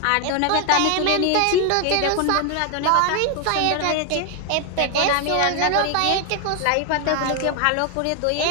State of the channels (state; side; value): different; both; correlation 0.01